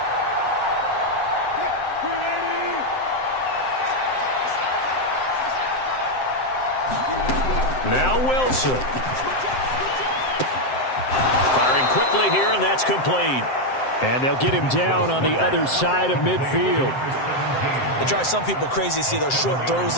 Now Wilson. Firing quickly here, and that's complete. And they'll get him down on the other side of midfield. It drives some people crazy to see those short throws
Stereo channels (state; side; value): late; right; 7.7 ms